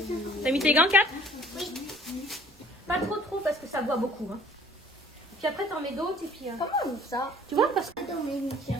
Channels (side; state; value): right; noise; rumble, 29 dB below the sound